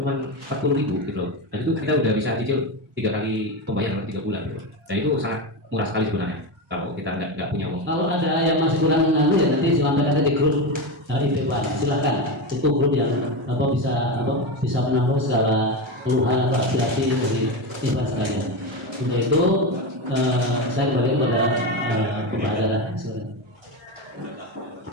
40 ribu gitu loh. Dan itu kita udah bisa cicil 3 kali pembayaran 3 bulan gitu. Dan itu sangat murah sekali sebenarnya kalau kita nggak punya uang. Kalau ada yang masih kurang mengalir ya nanti silahkan ada di grup IP Pak, silakan. Itu grup yang bisa menampung segala keluhan atau aspirasi dari Ikhwan sekalian. Untuk itu saya kembali kepada pembahasan. Silakan.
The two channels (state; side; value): normal; both; correlation 0.16